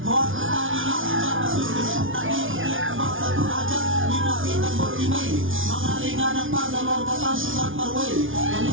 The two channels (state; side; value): late; left; 0.57 ms